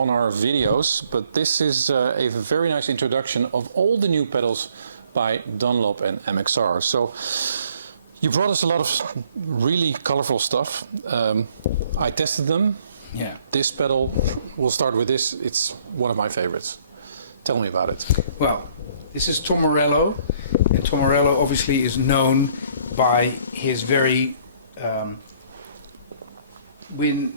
our videos, but this is a very nice introduction of all the new pedals by Dunlop and MXR. So you brought us a lot of really colorful stuff. I tested them. Yeah. This pedal, we'll start with this. It's one of my favorites. Tell me about it. Well, this is Tom Morello, and Tom Morello obviously is known by his very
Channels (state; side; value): inverted; both; correlation -0.62